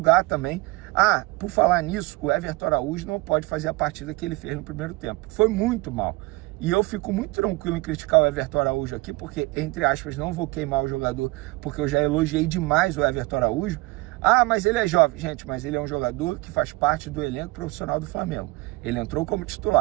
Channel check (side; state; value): left; quieter; 22.8 dB